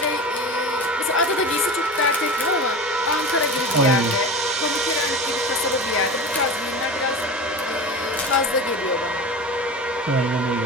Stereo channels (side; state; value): both; normal; correlation 0.31